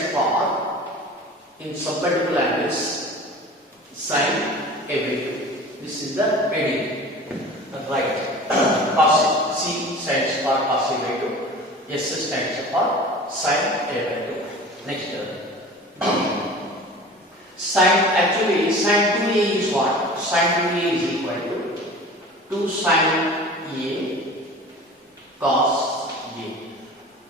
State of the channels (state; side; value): normal; both; correlation 0.39